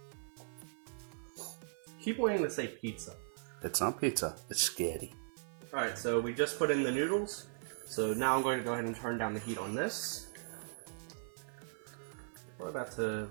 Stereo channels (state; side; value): silent; left; 52 dB below the other